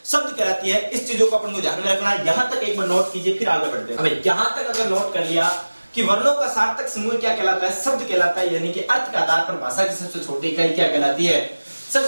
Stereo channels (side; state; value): both; inverted; correlation -1.00